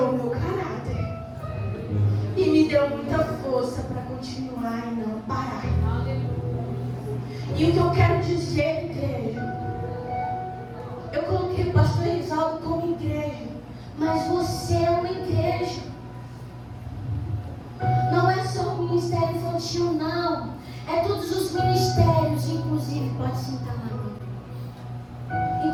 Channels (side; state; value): both; identical; correlation 1.00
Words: o meu caráter. E me deu muita força para continuar e não parar. E o que eu quero dizer, igreja, eu coloquei o pastor Risaldo como igreja, mas você é uma igreja. Não é só o ministério infantil, não. É todos os ministérios, inclusive, pode sentar lá.